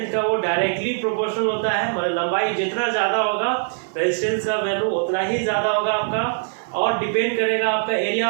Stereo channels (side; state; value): left; silent; digital silence